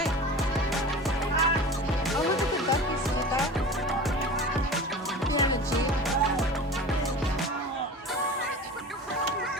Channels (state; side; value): normal; both; correlation 0.35